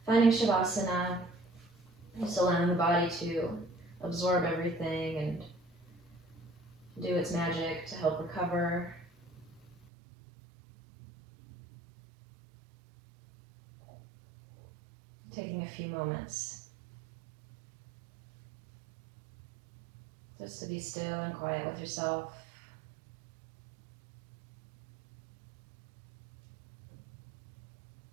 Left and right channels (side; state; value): left; drops out; at 9.8 s